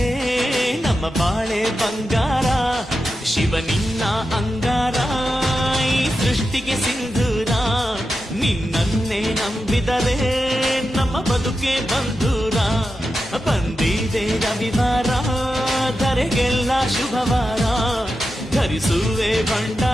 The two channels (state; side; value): normal; both; correlation 0.90